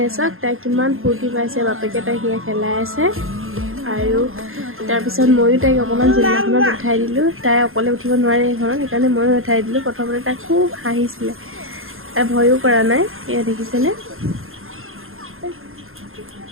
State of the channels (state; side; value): late; left; 0.60 ms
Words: চাওক, তাই কিমান ফূৰ্তি পাইছে, বাপেকে তাইক সেয়া খেলাই আছে। আৰু তাৰপিছত ময়ো তাইক অকণমান জোলনাখনত উঠাই দিলোঁ। তাই অকলে উঠিব নোৱাৰে এইখনত, সেইকাৰণে ময়ো উঠাই দিলোঁ। প্ৰথমতে তাই খুব হাঁহিছিলে, তাই ভয়ো কৰা নাই। এয়া দেখিছেনে?